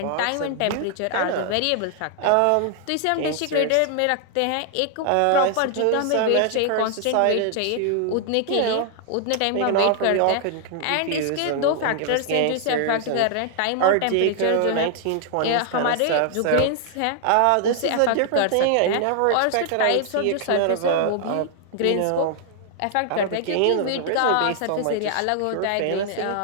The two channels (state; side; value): different; both; correlation 0.00